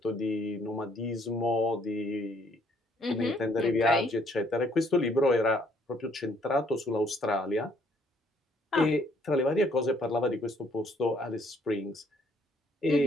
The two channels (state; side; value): normal; both; correlation 0.65